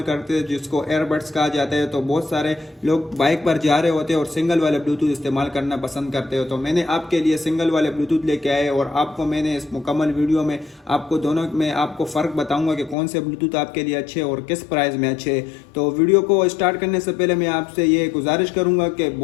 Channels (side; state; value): right; drops out; at 13.0 s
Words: करते, जिसको एयरबड्स कहा जाता है। तो बहुत सारे लोग बाइक पर जा रहे होते हैं और सिंगल वाले ब्लूटूथ इस्तेमाल करना पसंद करते हो। तो मैंने आपके लिए सिंगल वाले ब्लूटूथ लेके आए और आपको मैंने इस मुकम्मल वीडियो में आपको दोनों में आपको फ़र्क बताऊंगा कि कौन से ब्लूटूथ आपके लिए अच्छे और किस प्राइस में अच्छे। तो वीडियो को स्टार्ट करने से पहले मैं आपसे ये गुजारिश करूंगा कि